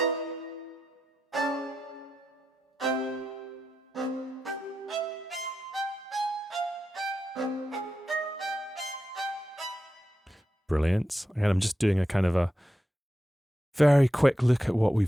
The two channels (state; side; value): normal; both; correlation 0.88